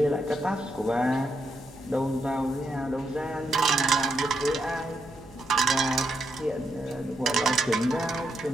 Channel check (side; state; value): right; noise; hum, 23 dB below the sound